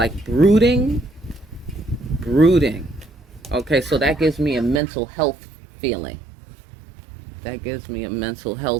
brooding. Okay, so that gives me a mental health feeling. That gives me a mental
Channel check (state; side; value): drops out; left; at 4.8 s